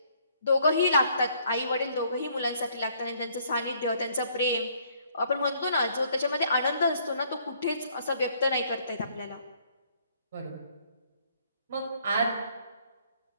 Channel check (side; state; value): both; inverted; correlation -0.64